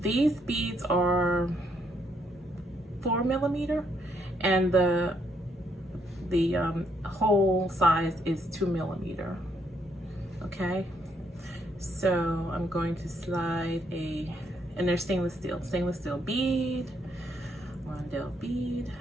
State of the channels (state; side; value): normal; both; correlation 0.73